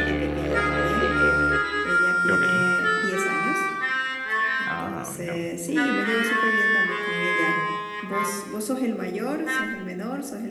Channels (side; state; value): both; identical; correlation 1.00